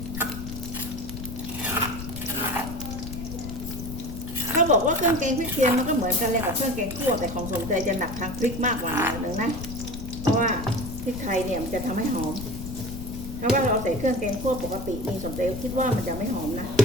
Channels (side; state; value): left; noise; rumble, 9 dB below the sound